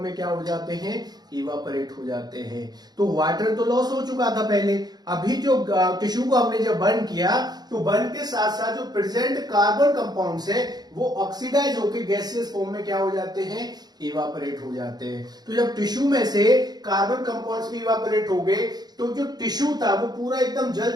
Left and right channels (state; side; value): late; left; 0.19 ms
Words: क्या हो जाते हैं, इवापोरेट हो जाते हैं। तो वाटर तो लॉस हो चुका था पहले, अभी जो टिश्यू को हमने जब बर्न किया तो बर्न के साथ साथ जो प्रेजेंट कार्बन कंपाउंड्स है वो ऑक्सीडाइज होकर गैसियस फॉर्म में क्या हो जाते हैं, इवापोरेट हो जाते हैं। तो जब टिश्यू में से कार्बन कंपाउंड्स भी इवापोरेट हो गए तो जो टिश्यू था वो पूरा एकदम जल